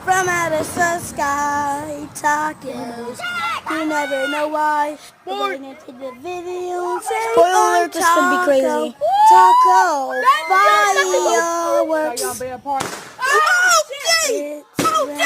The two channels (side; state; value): both; identical; correlation 1.00